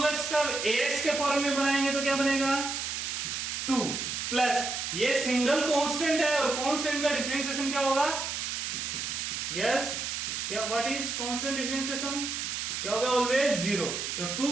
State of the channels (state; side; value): noise; right; hiss, 3 dB below the sound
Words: का ax के फॉर्म में बनाएंगे तो क्या बनेगा 2 प्लस ये सिंगल कांस्टेंट है और कांस्टेंट का डिफरेंशिएशन क्या होगा, यस क्या, व्हाट इज कांस्टेंट डिफरेंशिएशन, क्या होगा ऑलवेज 0। तो